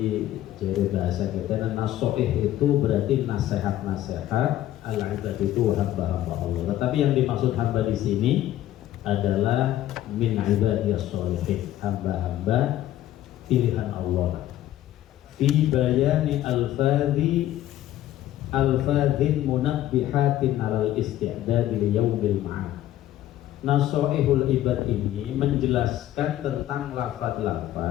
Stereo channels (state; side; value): quieter; right; 13.3 dB